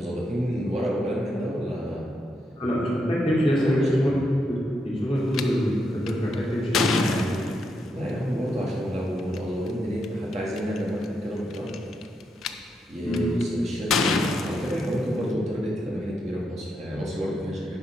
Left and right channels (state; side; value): normal; both; correlation 0.82